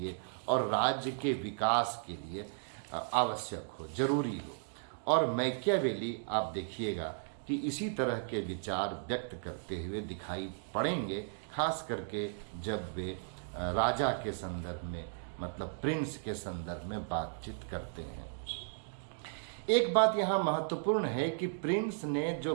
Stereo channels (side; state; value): left; silent; digital silence